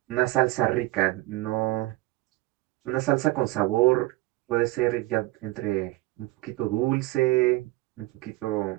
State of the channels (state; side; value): quieter; left; 20.0 dB